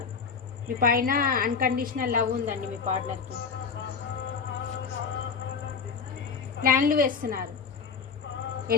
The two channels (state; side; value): quieter; right; 5.7 dB